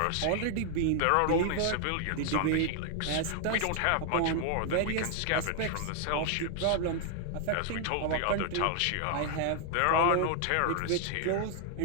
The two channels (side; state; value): both; different; correlation 0.00